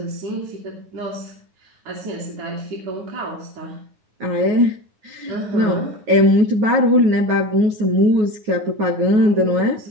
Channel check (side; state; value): left; late; 9.4 ms